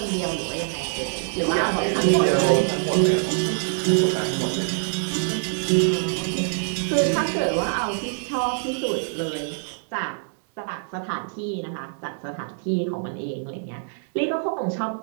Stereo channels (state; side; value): silent; left; digital silence